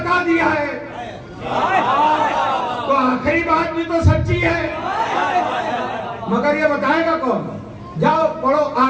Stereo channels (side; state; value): both; identical; correlation 1.00